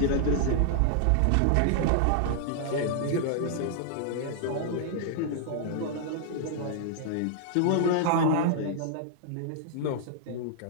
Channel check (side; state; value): both; different; correlation -0.01